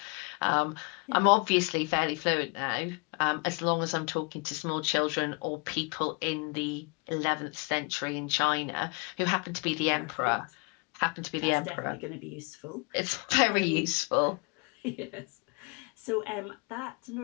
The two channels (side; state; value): right; quieter; 30.3 dB